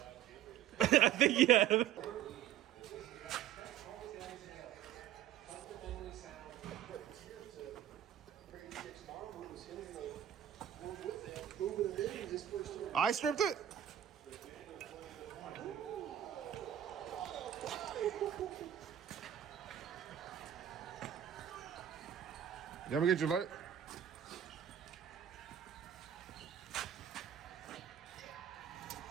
I think, yeah. I stripped it? You ever get your light?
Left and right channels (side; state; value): left; quieter; 10.8 dB